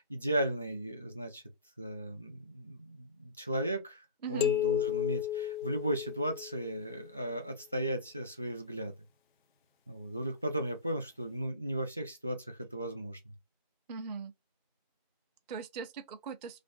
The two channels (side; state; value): both; inverted; correlation -0.39